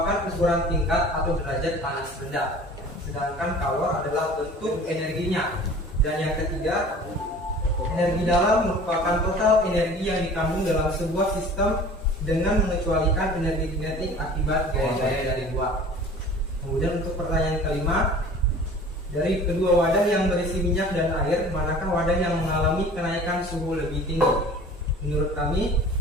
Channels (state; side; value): normal; both; correlation 0.44